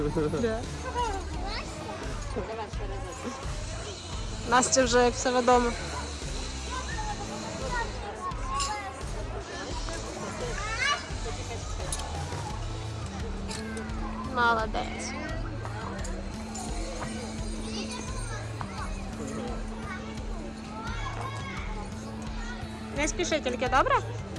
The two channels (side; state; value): both; identical; correlation 1.00